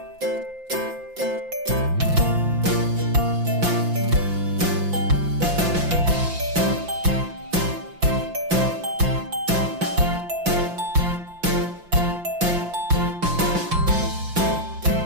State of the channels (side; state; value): left; late; 5.8 ms